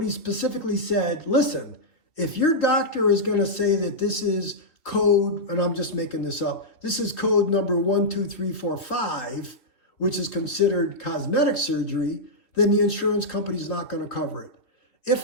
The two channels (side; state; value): right; late; 3.1 ms